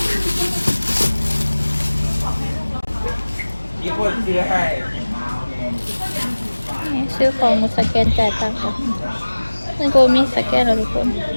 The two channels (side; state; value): both; inverted; correlation -1.00